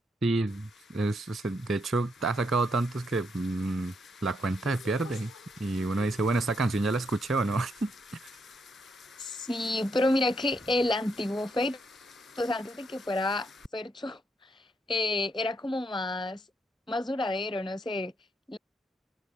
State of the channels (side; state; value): both; normal; correlation 0.77